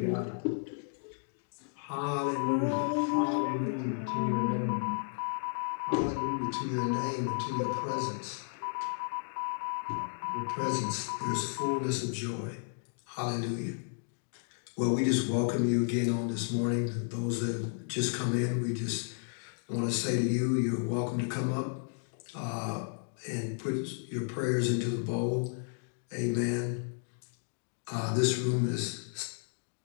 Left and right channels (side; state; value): right; silent; digital silence